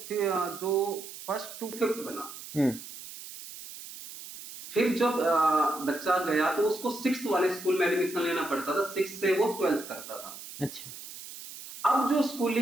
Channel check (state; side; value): noise; right; hiss, 13 dB below the sound